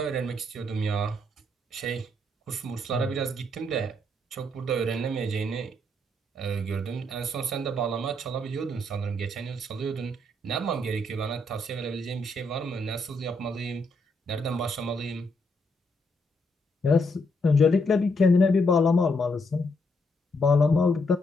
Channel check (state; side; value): normal; both; correlation 0.75